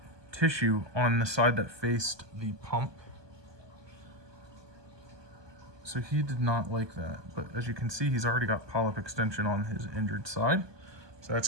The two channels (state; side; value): late; left; 1.2 ms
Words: tissue on the side that faced the pump. So he did not like that. But as you can see, he's already got polyp extension on his injured side. So that's